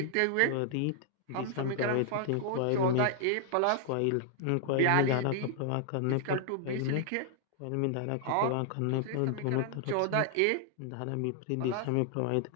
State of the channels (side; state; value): both; different; correlation -0.01